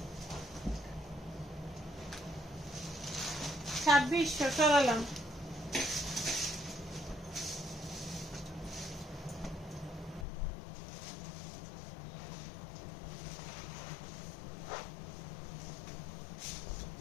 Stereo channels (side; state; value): right; drops out; at 10.2 s